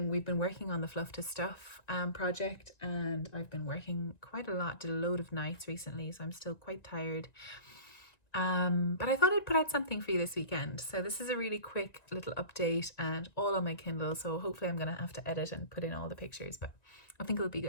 been working on the Fluff to Stuff project, and I've been working quite a lot, did a load of nights recently, so I'm still quite tired. But I thought I'd put out something for you this weekend. So this is a really quick little update and all on my Kindle. So hopefully I'm going to have to edit and put in all the pictures, but I think it'll be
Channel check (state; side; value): late; right; 1.9 ms